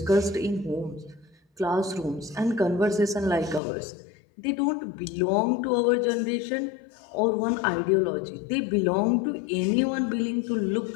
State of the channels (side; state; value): right; drops out; at 3.6 s